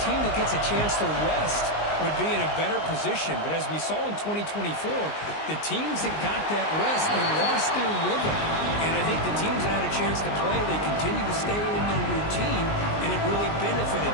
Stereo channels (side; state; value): right; late; 19 ms